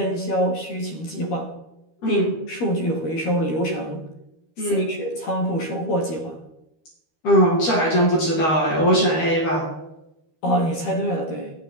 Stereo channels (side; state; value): right; late; 13 ms